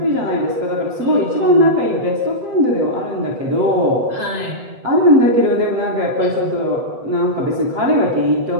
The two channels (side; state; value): left; late; 8.0 ms